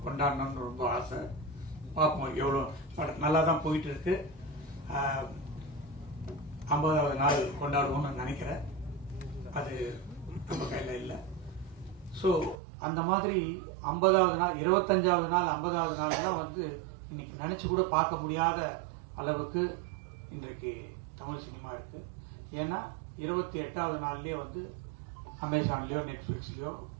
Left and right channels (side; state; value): left; drops out; at 12.6 s